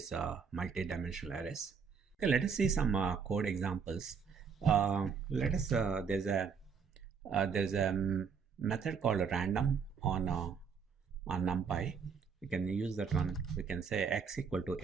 multi-dimensional arrays. Okay, let us see some code examples. There's a method called random on NumPy. We can use that one. We can say x equal to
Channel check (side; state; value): left; quieter; 6.1 dB